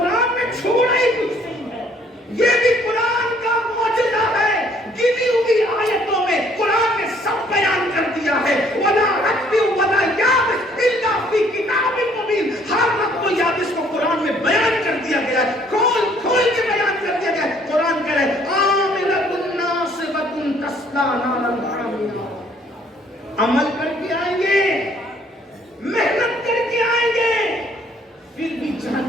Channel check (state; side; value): normal; both; correlation 0.62